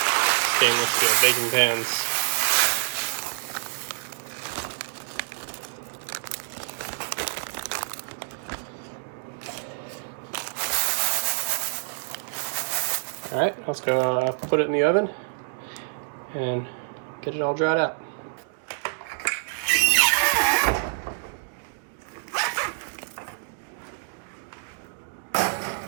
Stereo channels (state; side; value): silent; left; digital silence